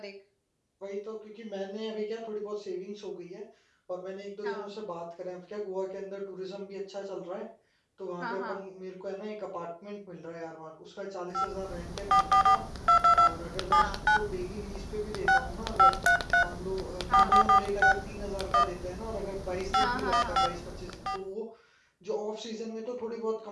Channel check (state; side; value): identical; both; correlation 1.00